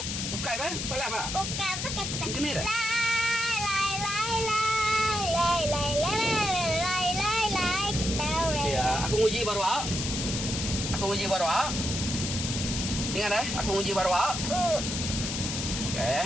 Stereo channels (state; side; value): noise; left; hiss, 3 dB below the sound